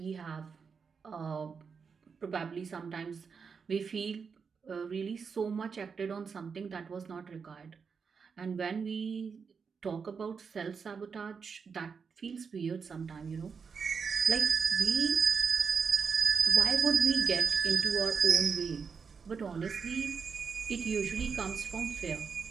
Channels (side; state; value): left; quieter; 5.8 dB